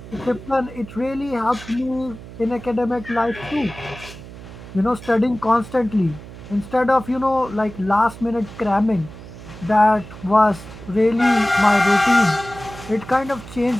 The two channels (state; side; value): noise; right; hum, 15 dB below the sound